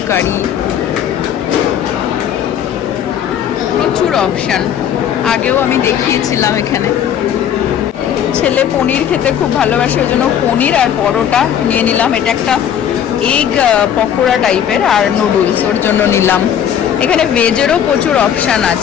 কারি, প্রচুর অপশান। আগেও আমি দেখিয়েছিলাম এখানে। ছেলে পনির খেতে খুব ভালোবাসে, ওই জন্য পনির আর পরোটা নিয়ে নিলাম। এটা একটা এগ পকোড়া টাইপের, আর নুডলস ওর জন্য নিলাম। এখানে ভেজেরও প্রচুর অপশান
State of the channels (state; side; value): quieter; right; 9.3 dB